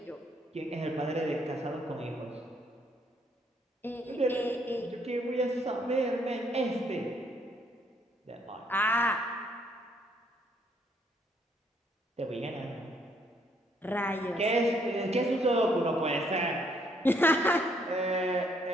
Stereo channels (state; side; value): normal; both; correlation 0.68